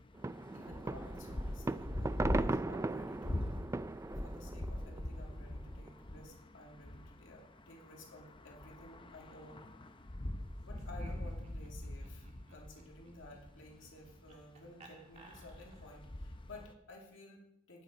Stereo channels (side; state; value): both; normal; correlation 0.85